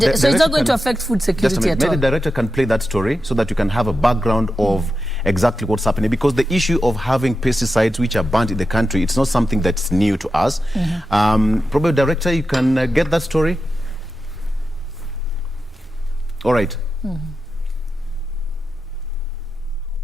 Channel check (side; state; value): both; normal; correlation 0.90